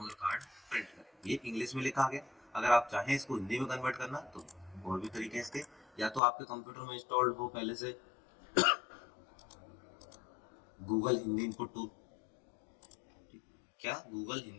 कार्ड प्रिंट करें। ये इंग्लिश में लिखा आ गया। अगर आप चाहें इसको हिंदी में कन्वर्ट करना तो और भी तरीके हैं इसके, या तो आपके कंप्यूटर में इंस्टॉल्ड हो पहले से गूगल हिंदी इनपुट टूल, क्या गूगल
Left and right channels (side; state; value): right; drops out; at 6.2 s